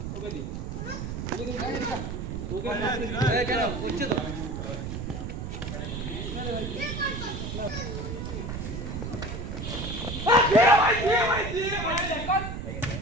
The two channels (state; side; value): noise; right; rumble, 5 dB below the sound